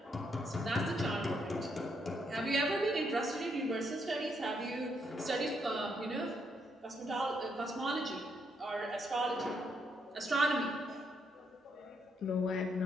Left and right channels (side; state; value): both; normal; correlation 0.76